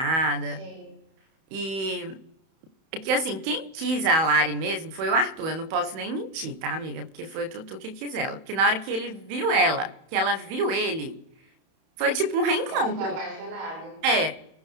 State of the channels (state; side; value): late; left; 31 ms